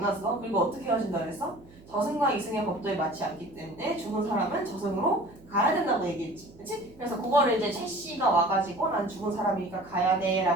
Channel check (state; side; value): noise; right; hum, 24 dB below the sound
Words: 그리고 어떻게 헤어진다 그랬어? 저승과 이승의 법도에 맞지 않기 때문에 죽은 사람은 저승으로 가야 된다고 얘기했지. 그치? 그래서 그거를 이제 최씨가 와가지고 난 죽은 사람이니까 가야 돼